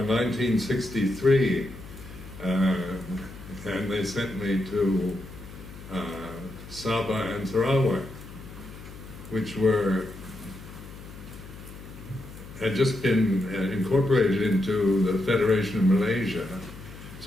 1963, and they sent me to Sabah and Sarawak, which had just been incorporated into the Federation of Malaysia.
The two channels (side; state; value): left; noise; hum, 15 dB below the sound